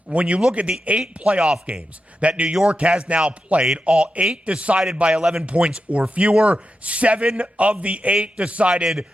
When you look at the 8 playoff games that New York has now played, all 8 decided by 11 points or fewer, 7 of the 8 decided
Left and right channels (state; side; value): normal; both; correlation 0.88